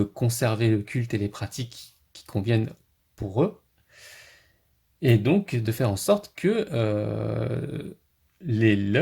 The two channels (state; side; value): identical; both; correlation 1.00